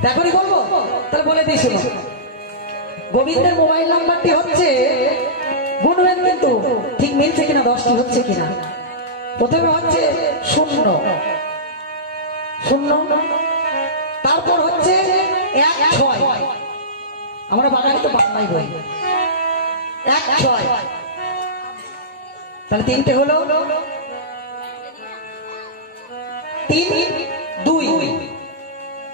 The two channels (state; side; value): normal; both; correlation -0.19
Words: এখনই বলবো, তাহলে বলে দিই শুনো। গোবিন্দের মোবাইল নাম্বারটি হচ্ছে, গুনবেন কিন্তু ঠিক মিলছে কিনা, 10টি হচ্ছে কিনা। প্রথমে হচ্ছে 0 0, তারপর হচ্ছে 16, আমরা বাঙালি তো বাংলাই বলি, 16, তাহলে 3টে হলো, 3 2,